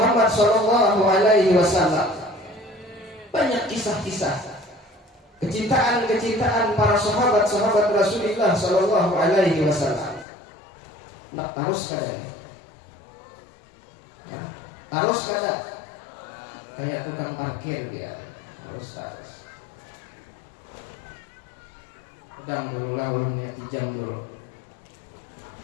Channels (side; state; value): right; drops out; at 10.2 s